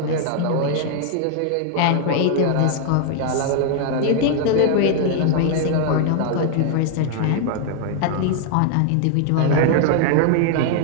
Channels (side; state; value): both; different; correlation 0.00